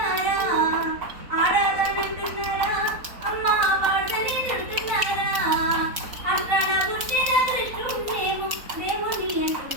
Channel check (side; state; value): left; late; 4.2 ms